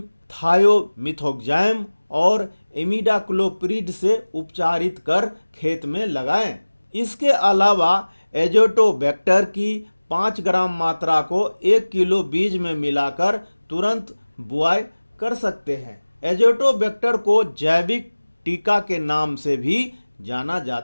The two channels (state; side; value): inverted; both; correlation -1.00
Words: थायोमिथोक्साम और इमिडाक्लोप्रिड से उपचारित कर खेत में लगाएं। इसके अलावा एजोटोबैक्टर की 5 ग्राम मात्रा को 1 किलो बीज में मिलाकर तुरंत बुआई कर सकते हैं। एजोटोबैक्टर को जैविक टीका के नाम से भी जाना